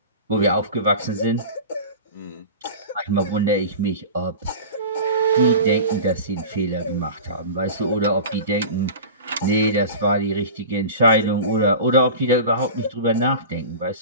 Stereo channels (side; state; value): both; inverted; correlation -0.33